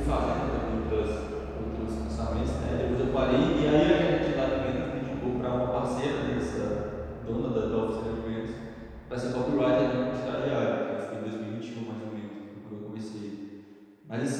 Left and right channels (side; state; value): both; identical; correlation 1.00